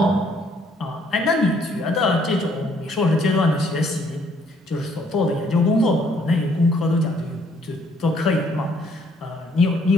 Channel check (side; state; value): both; normal; correlation 0.65